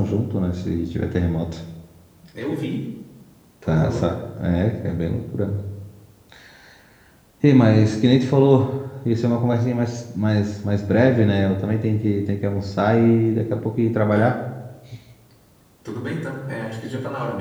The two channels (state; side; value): identical; both; correlation 1.00